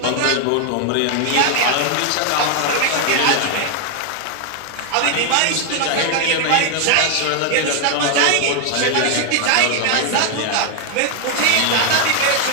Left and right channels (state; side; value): different; both; correlation 0.00